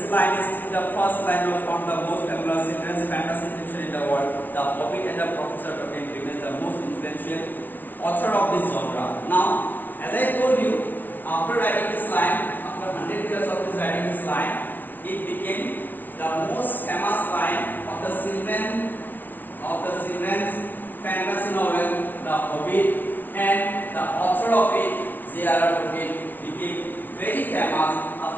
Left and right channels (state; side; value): late; right; 0.085 ms